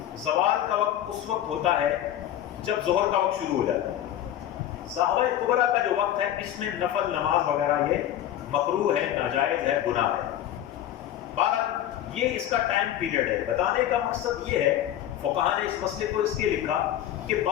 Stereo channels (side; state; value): right; quieter; 11.8 dB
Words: زوال کا وقت اس وقت ہوتا ہے جب ظہر کا وقت شروع ہو جاتا ہے۔ ضحوہ کبریٰ کا جو وقت ہے اس میں نفل نماز وغیرہ یہ مکروہ ہے، ناجائز ہے، گناہ ہے۔ بہرحال یہ اس کا ٹائم پیریڈ ہے۔ بتانے کا مقصد یہ ہے، فقہاء نے اس مسئلے کو اس لیے لکھا کہ